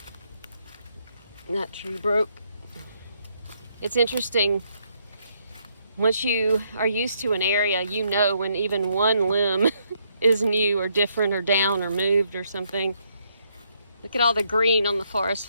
That tree broke. It's interesting. Once you are used to an area, you know when even one limb is new or different or down or moved or something. Look at all the green on the forest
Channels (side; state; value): both; inverted; correlation -0.74